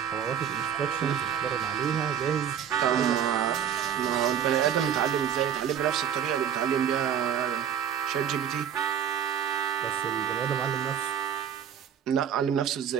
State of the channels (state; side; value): quieter; left; 8.8 dB